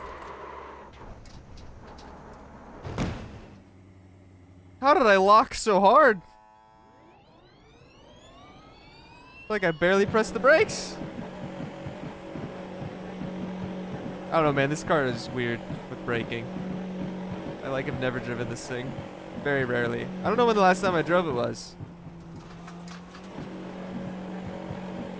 How did I lock so hard? Like I barely pressed the brakes. I don't know, man. This car is weird with braking. I have never driven this thing. Very rarely. I don't know when the last time I drove it was.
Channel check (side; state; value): both; identical; correlation 1.00